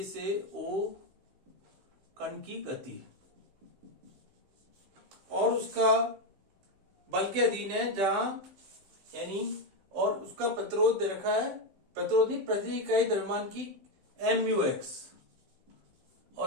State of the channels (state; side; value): late; left; 15 ms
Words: से O कण की गति, और उसका बल के अधीन है जहां, यानी, और उसका प्रतिरोध दे रखा है, प्रतिरोध नहीं, प्रति इकाई द्रव्यमान की MUX,